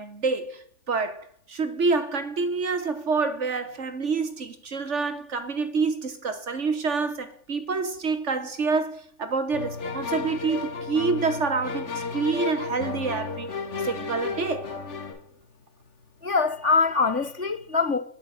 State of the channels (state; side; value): late; left; 3.4 ms